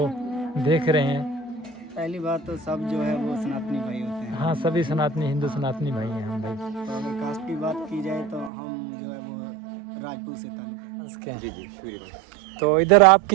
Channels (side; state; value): left; drops out; at 8.5 s